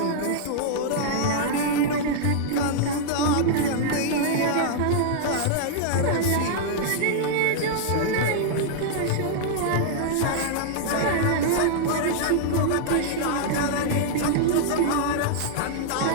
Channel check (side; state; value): both; different; correlation -0.01